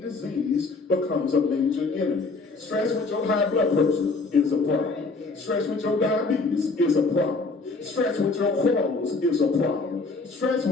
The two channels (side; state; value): right; quieter; 3.8 dB